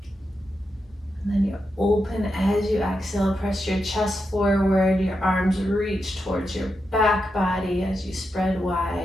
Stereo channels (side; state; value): both; normal; correlation 0.86